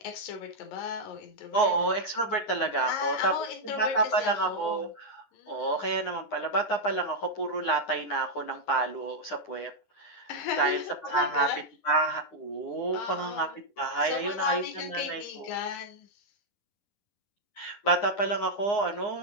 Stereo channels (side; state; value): right; late; 9.8 ms